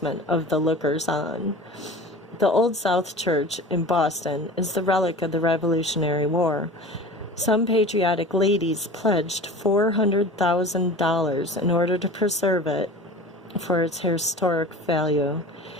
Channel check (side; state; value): both; normal; correlation 0.37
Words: of the lookers-on. The Old South Church in Boston is the relic of the Revolutionary War. Some patriotic ladies pledged $400,000 in order to preserve it for its historic value.